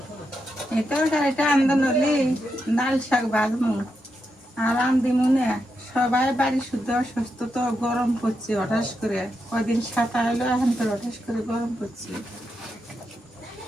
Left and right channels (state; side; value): normal; both; correlation 0.85